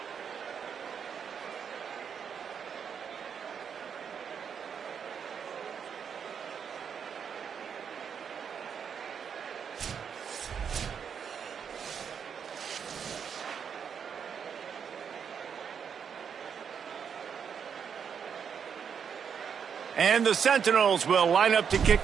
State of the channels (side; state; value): left; quieter; 7.2 dB